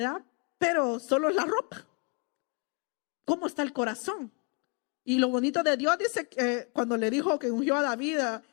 Pero solo es la ropa. ¿Cómo está el corazón? Y lo bonito de Dios dice que cuando le dijo que ungió a David,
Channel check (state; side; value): quieter; right; 34.2 dB